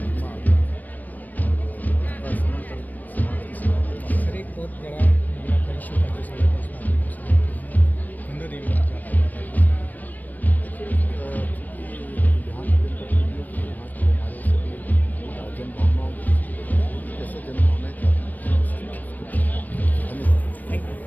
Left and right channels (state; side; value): late; right; 0.084 ms